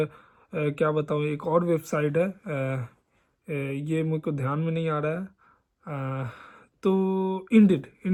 क्या बताऊँ एक और वेबसाइट है, ये मेरे को ध्यान में नहीं आ रहा है, तो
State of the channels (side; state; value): both; identical; correlation 1.00